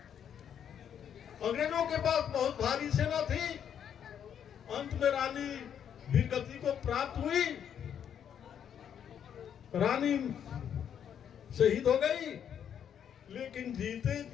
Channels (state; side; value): quieter; right; 8.8 dB